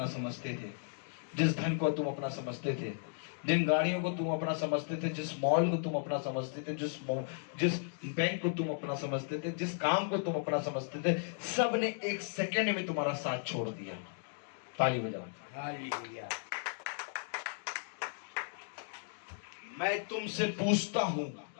समझते थे, जिस धन को तुम अपना समझते थे, जिन गाड़ियों को तुम अपना समझते थे, जिस मॉल को तुम अपना समझते थे, जिस बैंक को तुम अपना समझते थे, जिस काम को तुम अपना समझते थे, सब ने एक सेकंड में तुम्हारा साथ छोड़ दिया। ताली बजाओ। हालेलुया। मैं तुमसे पूछता हूं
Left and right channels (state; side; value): silent; right; digital silence